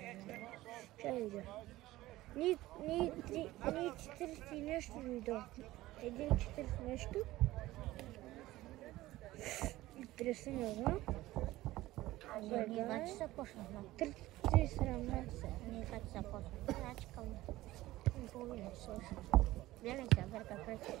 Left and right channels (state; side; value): quieter; left; 17.0 dB